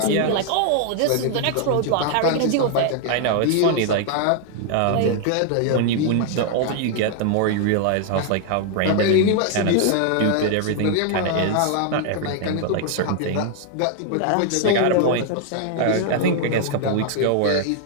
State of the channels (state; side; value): different; both; correlation 0.00